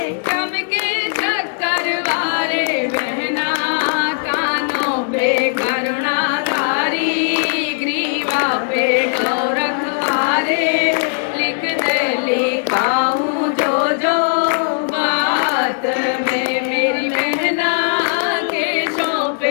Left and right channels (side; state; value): right; silent; digital silence